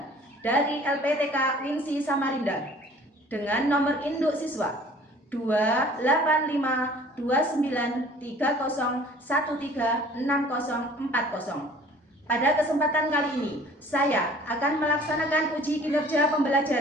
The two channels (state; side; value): normal; both; correlation 0.51